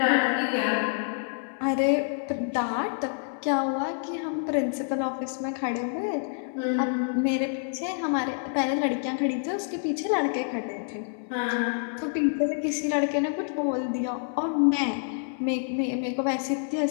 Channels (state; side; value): silent; right; 60 dB below the other